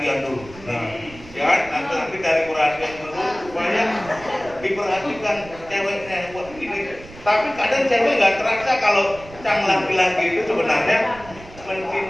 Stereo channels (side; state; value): right; noise; rumble, 19 dB below the sound